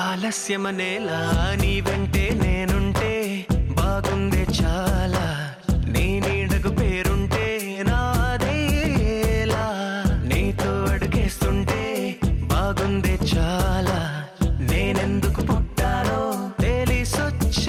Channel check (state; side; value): identical; both; correlation 1.00